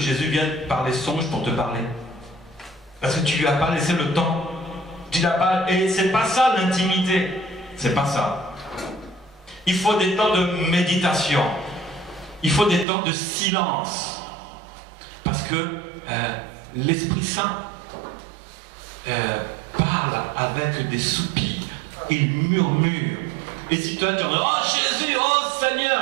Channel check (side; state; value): left; drops out; at 12.9 s